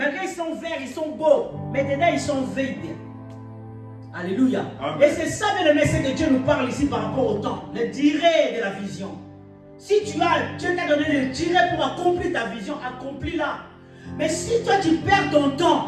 qu'ils sont verts, ils sont beaux. Mais dedans, ils sont vides. Alléluia. Amen. Et c'est ça, le message que Dieu nous parle ici par rapport au temps. Le durée de la vision. Si Dieu t'a donné le durée pour accomplir ta vision, accomplis-la. Mais si toi, tu perds ton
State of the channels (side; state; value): both; identical; correlation 1.00